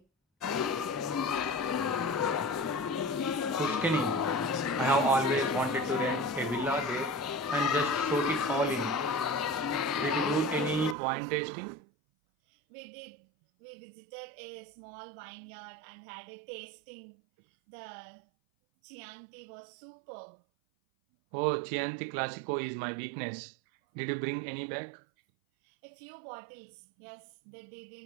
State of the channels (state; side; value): drops out; left; at 11.0 s